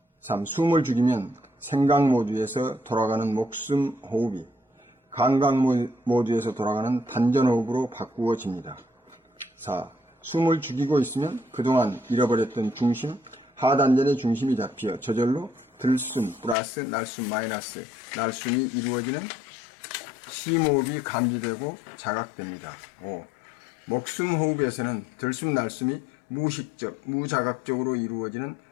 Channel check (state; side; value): drops out; right; at 16.6 s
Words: 3. 숨을 죽이면 생각 모드에서 돌아가는 목숨 호흡이 감각 모드에서 돌아가는 단전 호흡으로 바꾸어집니다. 4. 숨을 죽이고 있으면 그동안 잃어버렸던 중심, 하단전의 중심이 잡혀 저절로 들숨 플러스 날숨 마이너스 날숨이 이루어지는 심호흡이 감지되고 자각됩니다. 5. 목숨 호흡에서는 들숨 날숨이 무의식적, 무자각적으로 이루어지는